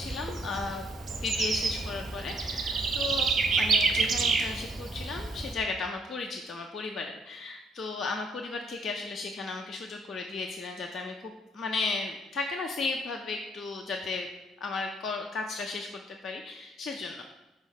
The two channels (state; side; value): normal; both; correlation 0.66